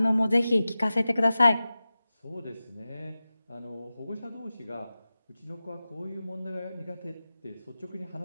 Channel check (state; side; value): inverted; both; correlation -0.95